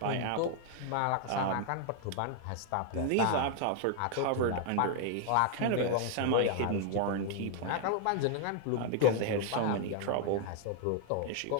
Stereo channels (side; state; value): both; different; correlation 0.00